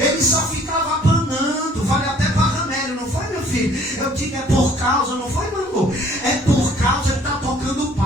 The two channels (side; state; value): both; normal; correlation 0.57